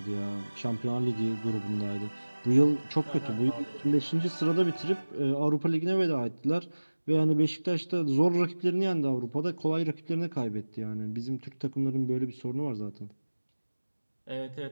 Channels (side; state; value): both; inverted; correlation -1.00